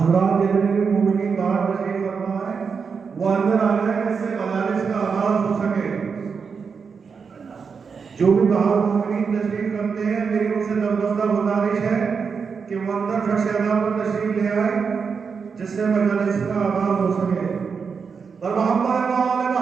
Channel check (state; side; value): quieter; left; 5.7 dB